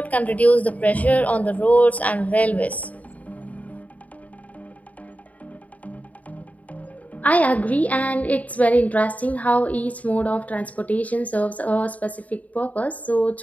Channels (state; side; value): late; right; 0.071 ms